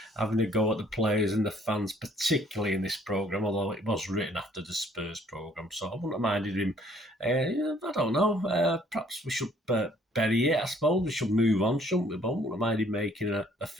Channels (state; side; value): normal; both; correlation 0.61